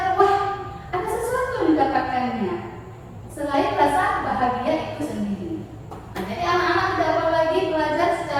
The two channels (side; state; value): both; identical; correlation 1.00